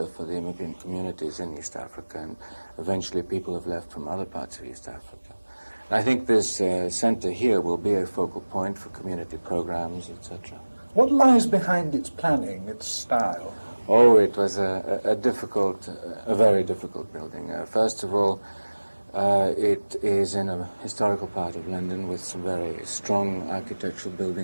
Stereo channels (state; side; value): inverted; both; correlation -1.00